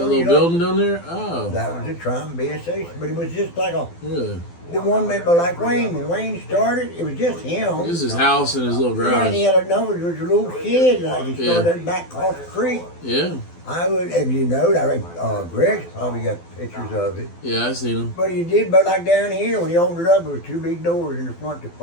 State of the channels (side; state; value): right; late; 12 ms